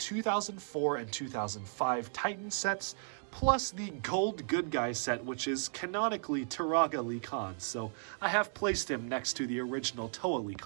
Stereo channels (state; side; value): silent; left; digital silence